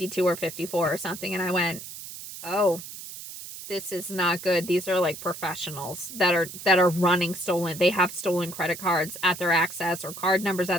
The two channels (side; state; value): right; noise; hiss, 12 dB below the sound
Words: or 54 or something. And I went, oh, this is not good. These are professionals that are running stolen. They have stolen credit cards at their access or card numbers